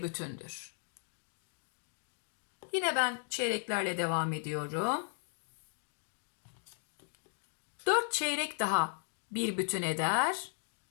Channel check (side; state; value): right; silent; 53 dB below the other